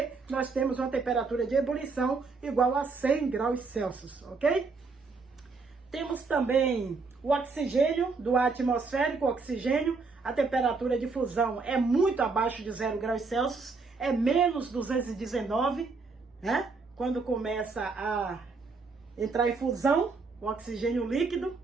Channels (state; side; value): quieter; left; 4.3 dB